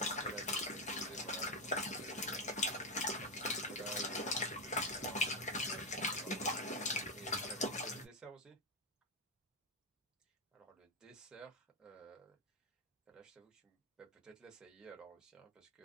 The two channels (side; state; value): both; normal; correlation 0.07